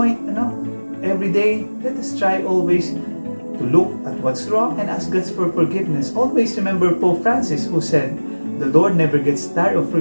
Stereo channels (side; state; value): both; inverted; correlation -1.00